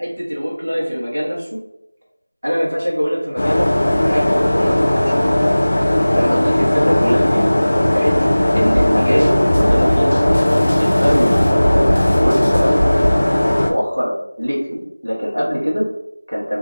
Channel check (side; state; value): both; inverted; correlation -0.99